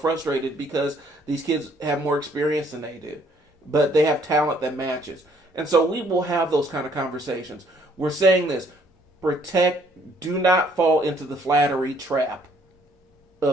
because these kids have more experience than they do. But they have talent that matches. And so we will have those kind of conversations. We're saying this, do not fall into the flattery trap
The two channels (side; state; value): both; normal; correlation 0.64